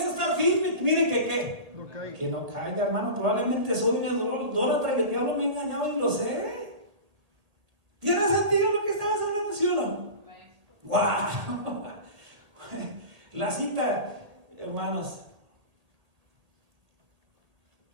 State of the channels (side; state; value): left; late; 1.6 ms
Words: estar firme, mire que ¿qué? No caiga. Que no caiga, hermano. Probablemente soy un idólatra y el diablo me ha engañado y lo sé. ¿Tiene sentido lo que estabas hablando, sí o no? ¡Wow! La cita, hermanos.